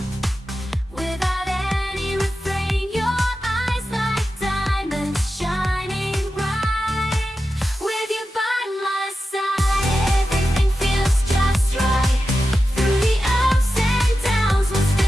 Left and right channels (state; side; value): normal; both; correlation 0.91